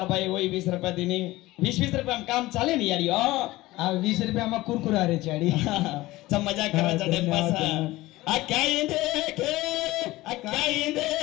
भाई वही 20 रुपए दिनी 20 रुपए हम काम चाले नहीं यारी आ 20 रुपए हम कुरकुरा रे चाड़ी सब मजाक करा चढ़े पास आ क्या देखे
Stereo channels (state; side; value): quieter; right; 18.5 dB